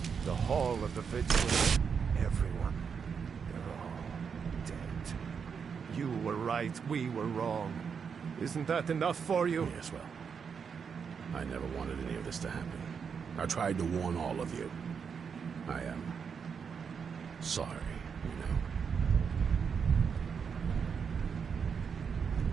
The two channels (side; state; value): left; quieter; 6.4 dB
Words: The Hall of the Vigilance, everyone, they're all dead. You were right, we were wrong. Isn't that enough for you? Yes, well, I never wanted any of this to happen. I tried to warn all of you. I am sorry, you know.